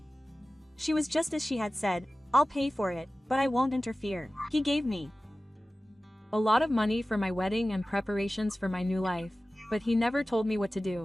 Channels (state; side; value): normal; both; correlation 0.96